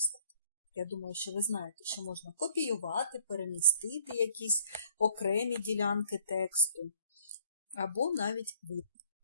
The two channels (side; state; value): both; inverted; correlation -0.58